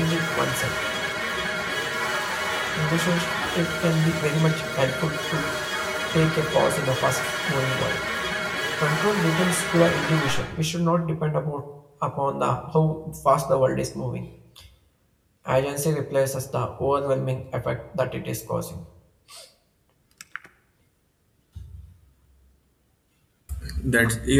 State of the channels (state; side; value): identical; both; correlation 1.00